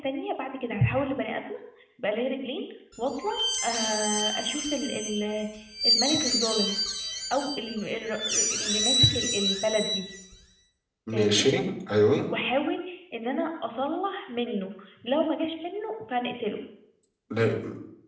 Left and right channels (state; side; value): identical; both; correlation 1.00